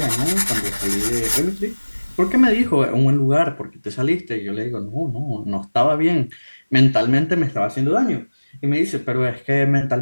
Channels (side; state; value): both; inverted; correlation -1.00